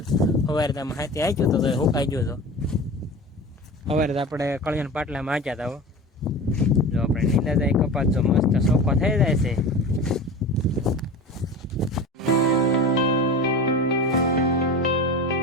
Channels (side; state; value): both; normal; correlation 0.32